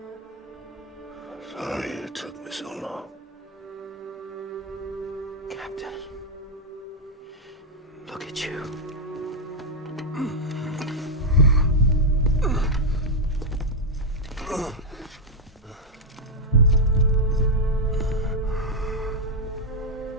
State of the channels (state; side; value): normal; both; correlation -0.02